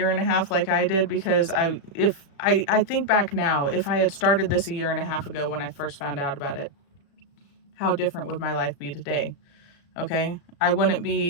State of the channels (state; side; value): late; right; 35 ms